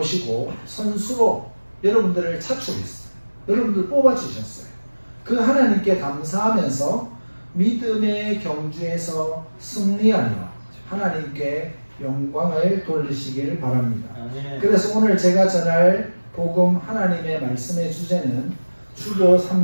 선수로 여러분들을 차출했어요. 여러분들 뽑아주셨어요. 그 하나님께 감사하면서 믿음의 경주에서 승리하려 하나님께 영광을 돌리시길 바랍니다. 그래서 오늘 제가 전할 복음 하나님의 말씀의 주제는 주보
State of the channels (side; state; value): both; inverted; correlation -1.00